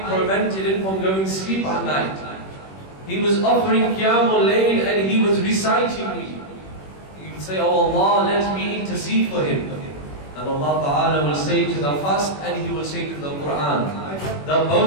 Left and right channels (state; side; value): late; right; 21 ms